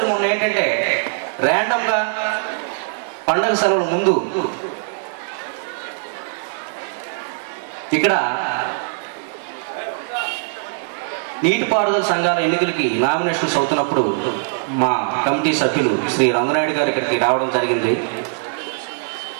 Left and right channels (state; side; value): silent; left; digital silence